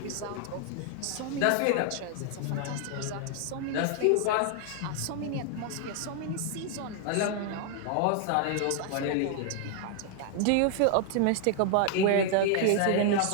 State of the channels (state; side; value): different; both; correlation 0.00